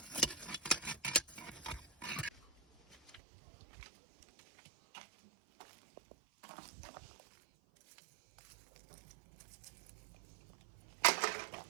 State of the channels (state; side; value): drops out; left; at 3.2 s